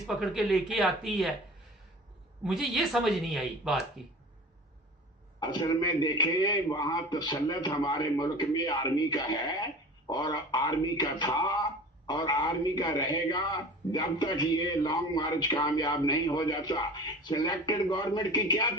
पकड़ के लेके आती है, मुझे ये समझ नहीं आई बात की। असल में देखिए, वहां तसल्लुत हमारे मुल्क में आर्मी का है और आर्मी का था और आर्मी का रहेगा जब तक ये लॉन्ग मार्च कामयाब नहीं हो जाता। सिलेक्टेड गवर्नमेंट की क्या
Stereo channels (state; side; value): normal; both; correlation 0.38